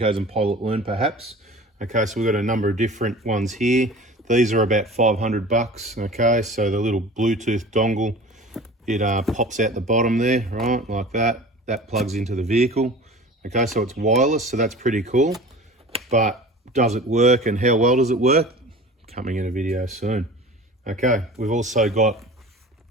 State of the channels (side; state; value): both; normal; correlation 0.40